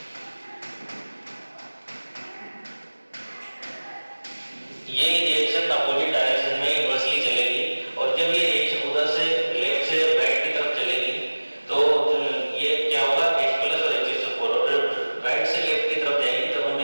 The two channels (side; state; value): both; inverted; correlation -1.00